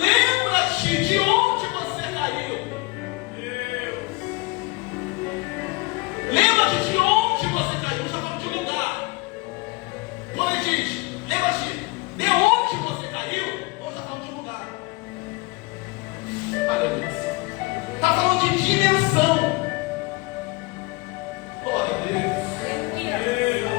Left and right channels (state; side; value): quieter; right; 24.8 dB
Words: de onde você caiu. Lembra-te de onde você caiu. Já falou de lugar. Quando ele diz: lembra-te de onde você caiu, ou já falou de lugar. Aleluia. Está falando de dimensão. Glória a Deus.